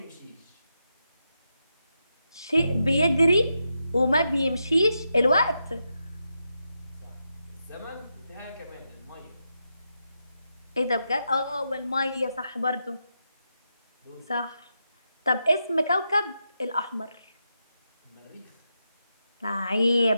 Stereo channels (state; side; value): inverted; both; correlation -0.86